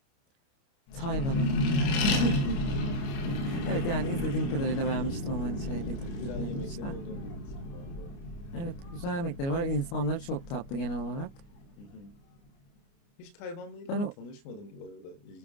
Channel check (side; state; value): right; late; 29 ms